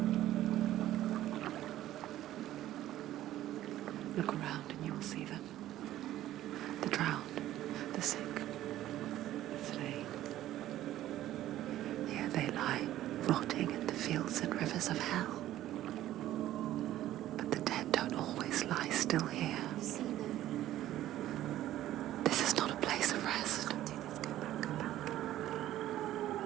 Look around and you'll see them. The drowned, the sick, the slain. Here they lie, rotting in the fields and rivers of hell. But the dead don't always lie still here. You see them? This is not a place of rest. Can't do this. Go back. Go back.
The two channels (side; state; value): left; quieter; 13.7 dB